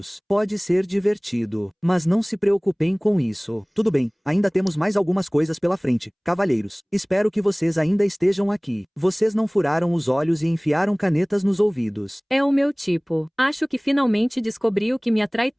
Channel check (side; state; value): both; identical; correlation 1.00